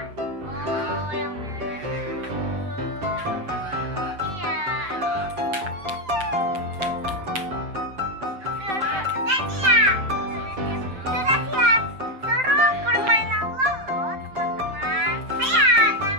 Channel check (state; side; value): late; left; 7.8 ms